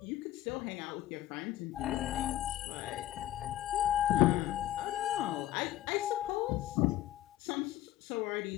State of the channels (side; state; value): right; quieter; 13.6 dB